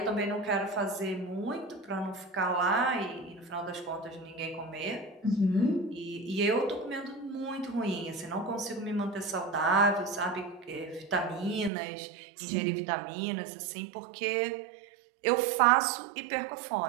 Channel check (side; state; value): left; drops out; at 11.7 s